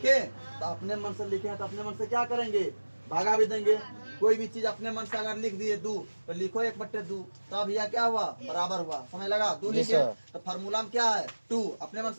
तो अपने मन से लिखे तो अपने मन से क्या करेंगे भागा भी देंगे। कोई भी चीज अपने मन से अगर लिख दिए 2 तो लिखो 1/2 तब यह क्या हुआ बराबर हुआ, समझ लगा 2 लिखे तो फार्मूला में क्या है 2 अपने मन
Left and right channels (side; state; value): both; inverted; correlation -1.00